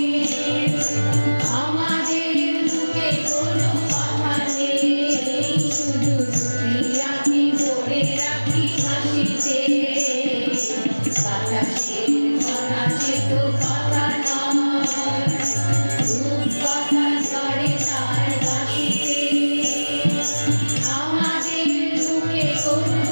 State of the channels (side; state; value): both; inverted; correlation -1.00